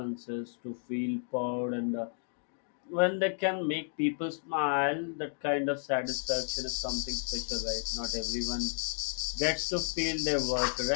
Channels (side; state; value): right; silent; digital silence